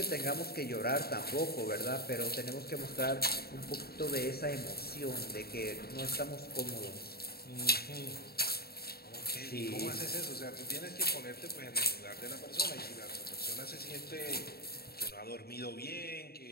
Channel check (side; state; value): right; late; 0.45 ms